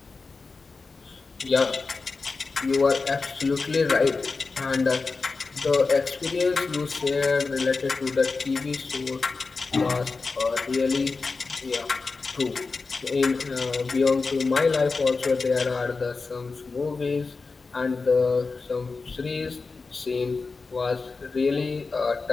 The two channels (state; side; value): quieter; right; 4.2 dB